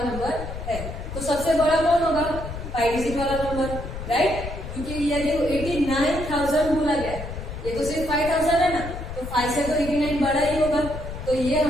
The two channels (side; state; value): left; noise; rumble, 8 dB below the sound